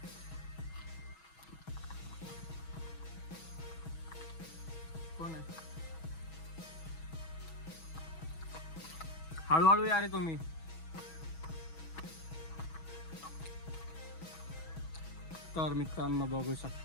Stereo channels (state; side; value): late; right; 6.2 ms